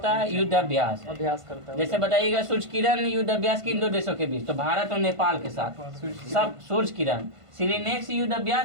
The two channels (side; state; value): left; late; 1.5 ms